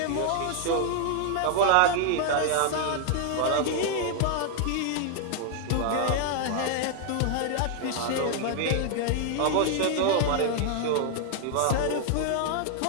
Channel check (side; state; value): both; different; correlation 0.00